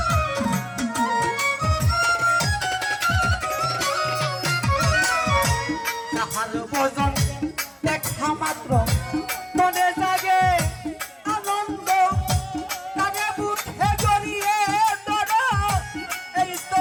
ভজন দেখা মাত্র মনে জাগে আনন্দ তারে মুখে জড়িয়ে ধরো এই তো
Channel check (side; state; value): both; identical; correlation 1.00